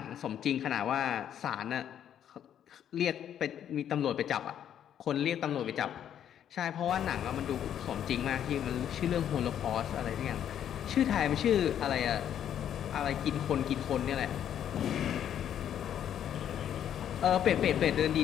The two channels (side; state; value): right; quieter; 9.8 dB